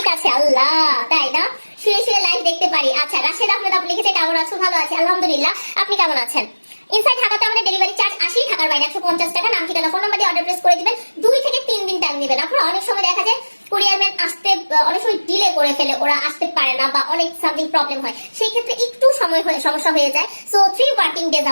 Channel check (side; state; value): both; inverted; correlation -1.00